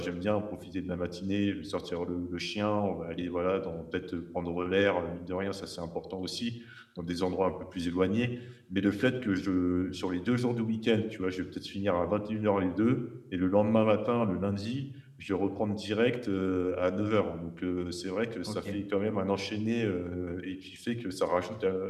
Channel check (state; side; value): identical; both; correlation 1.00